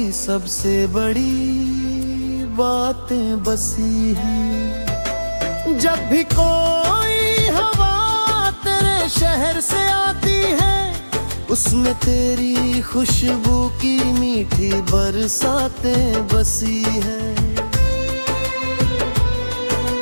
सबसे बड़ी बातें बसी हैं। जब भी कोई हवा तेरे शहर से आती है, उसमें तेरी खुशबू की मीठी बरसातें बसी हैं।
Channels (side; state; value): both; inverted; correlation -1.00